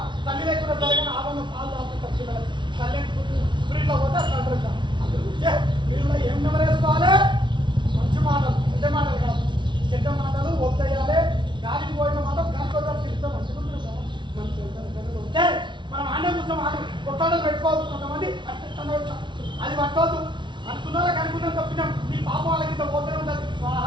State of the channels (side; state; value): left; late; 0.23 ms